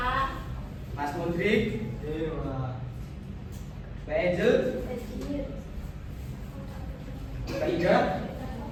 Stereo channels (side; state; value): both; identical; correlation 1.00